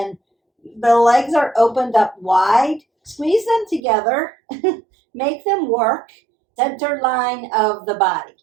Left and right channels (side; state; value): left; drops out; at 3.8 s